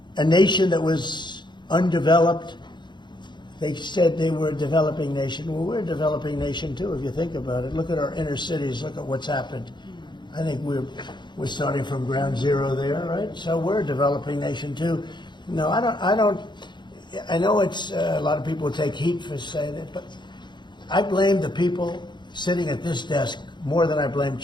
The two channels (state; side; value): late; right; 0.22 ms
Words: a nation that was undeveloped. They said they were a developing nation. Well, we're a developing nation too, if you think about it. Look at our inner cities. Look at what's happened. I think we're starting from ground zero there, right? So we're a developing nation too. No, I don't. I know it's a lot of people take heat for saying it, but I blame the people sitting at this desk more than I blame